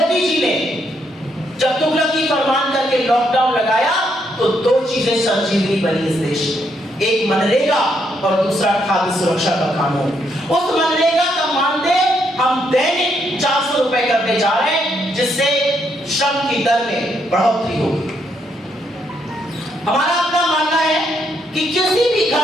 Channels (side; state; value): both; normal; correlation 0.75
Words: जी ने जब तुगलकी फरमान करके लॉकडाउन लगाया, तो 2 चीजें संजीवनी बनी इस देश में, एक मनरेगा और दूसरा खाद्य सुरक्षा का कानून। उस मनरेगा का मानदेय हम दैनिक 400 रुपए करने जा रहे हैं, जिससे श्रम की दर में बढ़ोतरी होगी। हमारा अपना मानना है कि किसी भी